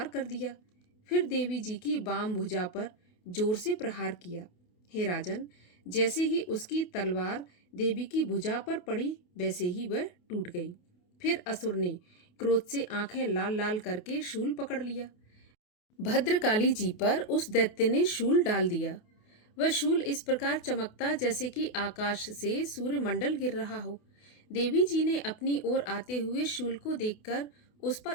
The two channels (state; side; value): late; right; 28 ms